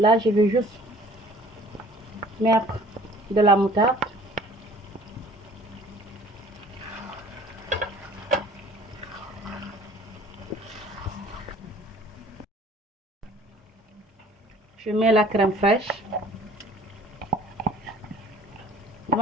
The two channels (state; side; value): normal; both; correlation 0.51